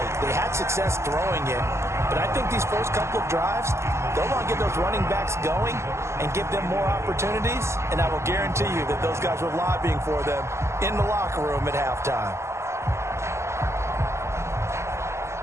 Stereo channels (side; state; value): left; late; 0.13 ms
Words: They had success throwing it, but I think these first couple of drives, they'll want to get those running backs going and give them more opportunities, and I will guarantee you that those guys were lobbying for them in the locker room at halftime.